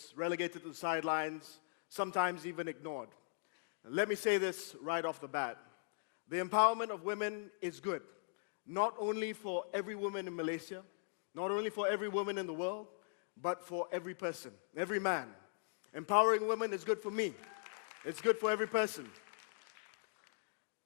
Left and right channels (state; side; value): silent; right; digital silence